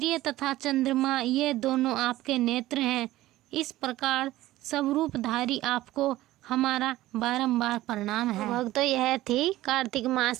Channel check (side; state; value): left; quieter; 16.1 dB